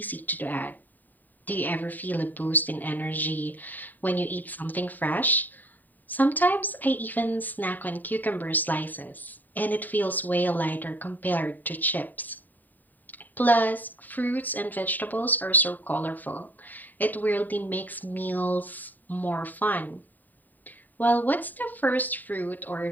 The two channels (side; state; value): right; late; 0.087 ms